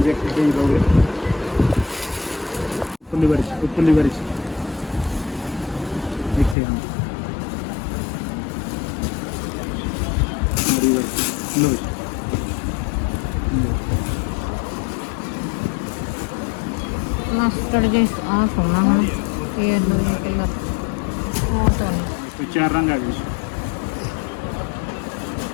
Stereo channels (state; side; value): drops out; right; at 6.6 s